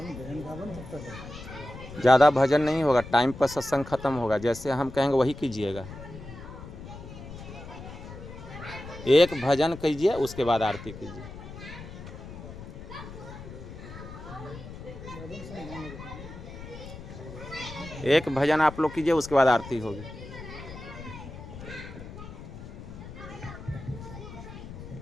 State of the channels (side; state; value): left; noise; rumble, 13 dB below the sound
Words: रावण तब तक है। ज़्यादा भजन नहीं होगा, टाइम पर सत्संग खत्म होगा, जैसे हम कहेंगे वही कीजिएगा। एक भजन कीजिए, उसके बाद आरती कीजिए। रावण से नहीं होगा। एक भजन आप लोग कीजिए, उसके बाद आरती होगी।